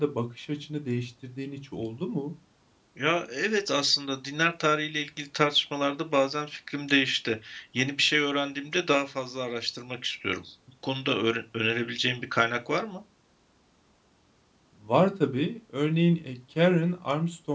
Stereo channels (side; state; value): both; identical; correlation 1.00